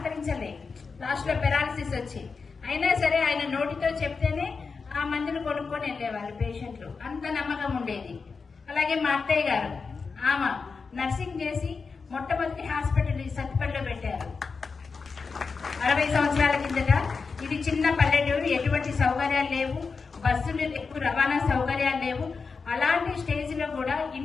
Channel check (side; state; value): right; quieter; 4.9 dB